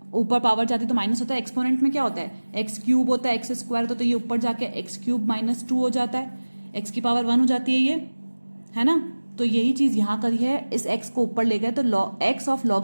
ऊपर पावर जाती तो माइनस होता है, एक्सपोनेंट में क्या होता है x क्यूब होता है, x स्क्वायर होता है, तो ये ऊपर जाके x क्यूब माइनस 2 हो जाता है, x की पावर 1 हो जाती है ये, है ना। तो यही चीज यहाँ करी है, इस x को ऊपर ले गए तो x of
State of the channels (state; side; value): inverted; both; correlation -1.00